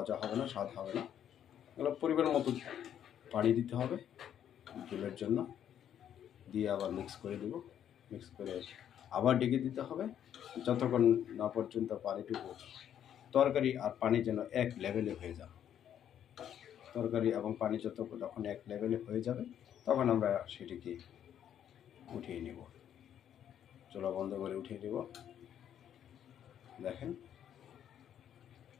হবে না, স্বাদ হবে না। এগুলো পরিমাণ মতো পানি দিতে হবে ঝোলের জন্য, দিয়ে আবার মিক্স করে দেব। মিক্স করে আবার ডেকে দিতে হবে যতক্ষণ না পর্যন্ত পানিটুকু, তরকারি আর পানি যেন এক লেভেলে হয়ে যায়। তরকারি এবং পানি যখন এক লেভেলে হয়ে যাবে তখন আমরা সেটিকে উঠিয়ে নেব। চুলা বন্ধ করে উঠিয়ে নেব। দেখেন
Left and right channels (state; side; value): quieter; right; 9.8 dB